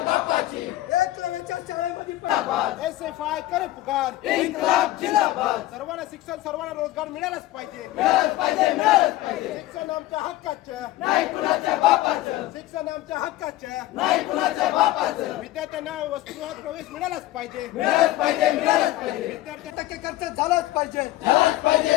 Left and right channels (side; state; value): right; quieter; 16.2 dB